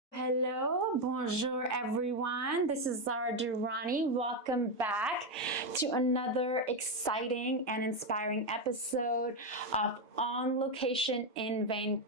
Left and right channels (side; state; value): both; normal; correlation 0.07